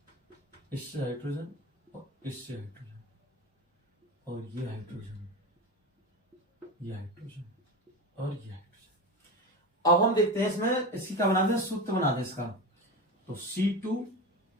इससे हाइड्रोजन, और इससे हाइड्रोजन, और ये हाइड्रोजन, ये हाइड्रोजन, और ये हाइड्रोजन। अब हम देखते हैं इसमें इसकी क्या बनाते हैं, सूत्र बनाते हैं इसका। तो C2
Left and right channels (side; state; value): both; normal; correlation 0.23